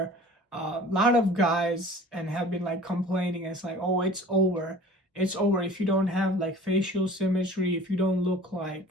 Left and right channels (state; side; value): normal; both; correlation 0.45